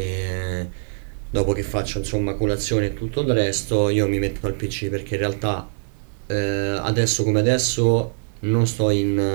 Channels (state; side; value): silent; left; digital silence